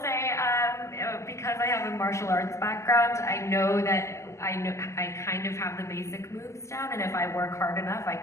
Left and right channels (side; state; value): right; late; 0.13 ms